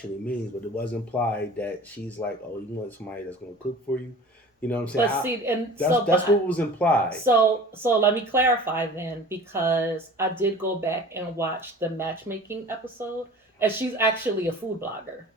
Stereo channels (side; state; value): both; normal; correlation 0.42